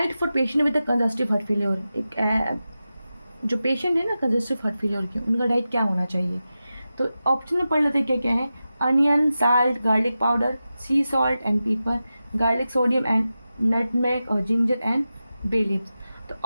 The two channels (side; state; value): both; inverted; correlation -0.93